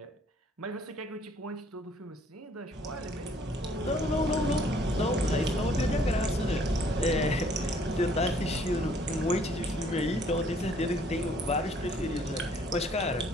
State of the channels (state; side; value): normal; both; correlation 0.61